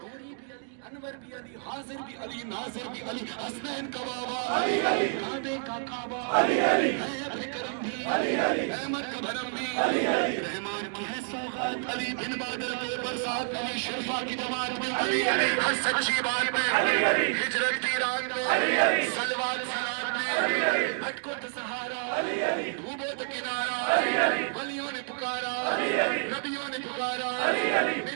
انور بھی علی حاضر بھی علی ناظر بھی علی حسنین کا بابا علی علی کعبے کا کعبہ علی علی ہے کرم بھی علی علی احمد کا بھرم بھی علی علی رحمان کی ہے سوغات علی بن بادل کے برسات علی شرفا کی جماعت میں علی علی ہر سچی بات میں علی علی ہجرت کی رات میں علی علی صلوات سلام میں علی علی بھٹکو تو سہارا علی علی ڈوبو تو کنارا علی علی ولیوں نے پکارا علی علی نبیوں نے پکارا علی علی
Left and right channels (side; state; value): left; silent; 59 dB below the other